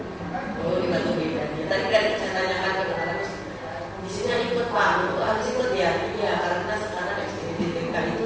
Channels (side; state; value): both; identical; correlation 1.00